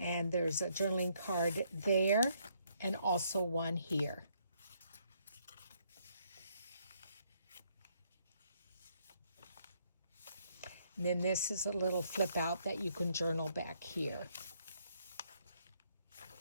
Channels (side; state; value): both; inverted; correlation -0.71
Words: there's a journaling card there and also one here. And then this is a little flip out that you can journal back here.